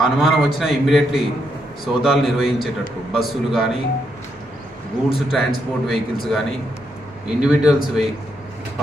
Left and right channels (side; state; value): both; normal; correlation 0.79